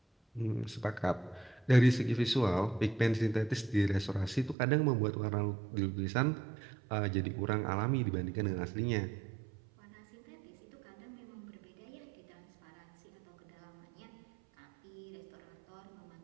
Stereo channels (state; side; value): drops out; left; at 4.5 s